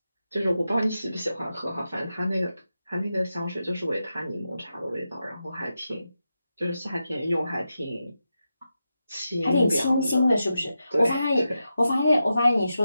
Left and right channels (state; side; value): inverted; both; correlation -0.89